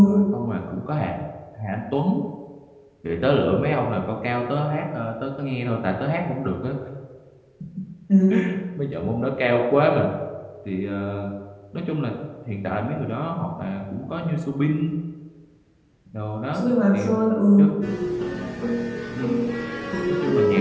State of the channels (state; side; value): identical; both; correlation 1.00